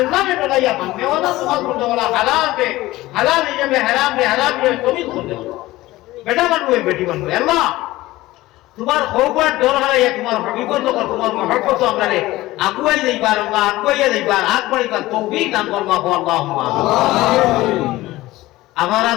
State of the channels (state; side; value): quieter; right; 17.8 dB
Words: ने डराइया मानने वाला तुम्हारा सुनने वाला हलाल है में हराम है तुम्हें सुनने वाला बेटा बन हुए बेटी बन हुए अल्लाह तुम्हारा खौफर डर हराइया तुम्हारा हकीकत तो कर तुम्हारा मोहब्बत तो हमने अगुवाई नहीं बार अल्लाह अगुवाई नहीं बार आग बड़ी बार तौफीक दान फरमा हो अल्लाहुम्मा हमारा